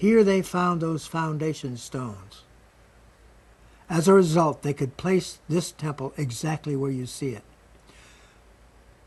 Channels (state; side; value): identical; both; correlation 1.00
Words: they found those foundation stones. As a result, they could place this temple exactly where you see it.